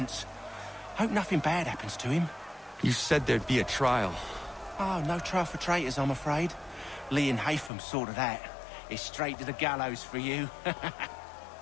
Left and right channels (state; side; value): drops out; right; at 7.7 s